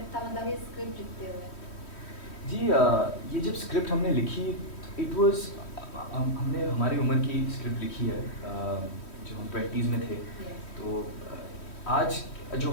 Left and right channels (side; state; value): right; late; 3.1 ms